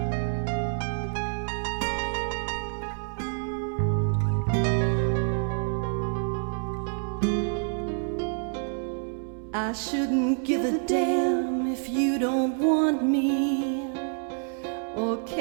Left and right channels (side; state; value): left; silent; 60 dB below the other